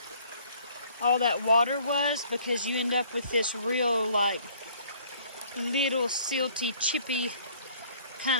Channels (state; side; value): inverted; both; correlation -0.57